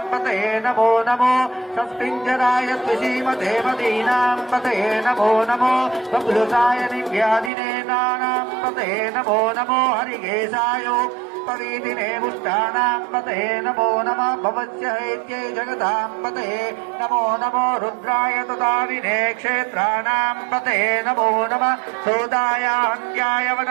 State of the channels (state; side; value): drops out; left; at 7.5 s